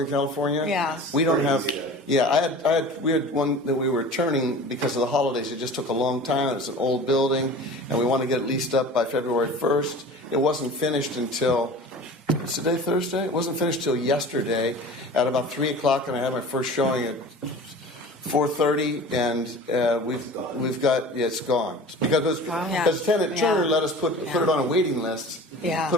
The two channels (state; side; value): normal; both; correlation 0.39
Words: California. Yeah. We don't have. Yeah, we had one that we were turning because of the holidays. It just took a long time. It's an old building, and we want to get it leased up by February 1st. It wasn't finished until. Is today Thursday? It wasn't finished till yesterday at about 3:00, and I had my first showing at 4:30, and we've got it's gone because Tenant Turner let us put it on a waiting list. Yeah.